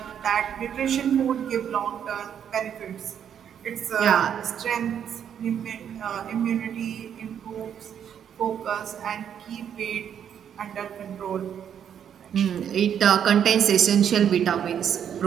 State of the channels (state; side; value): quieter; left; 8.7 dB